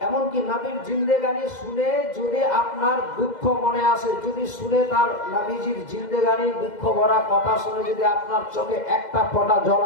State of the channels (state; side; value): late; right; 2.0 ms